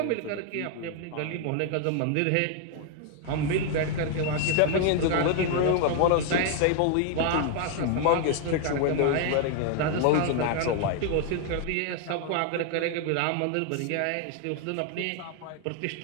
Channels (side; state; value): both; different; correlation 0.00